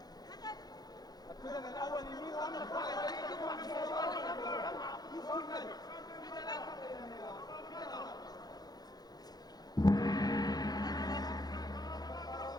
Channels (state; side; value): late; right; 0.19 ms